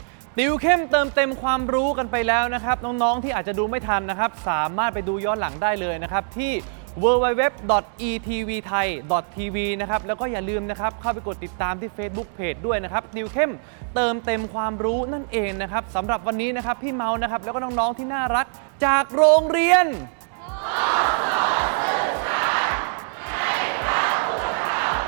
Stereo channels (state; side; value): silent; left; 63 dB below the other